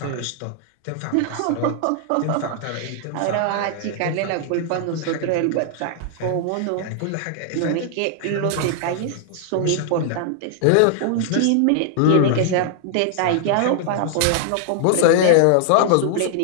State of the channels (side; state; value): both; different; correlation -0.01